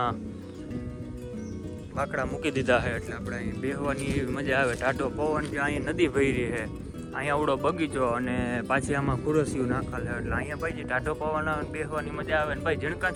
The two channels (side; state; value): both; identical; correlation 1.00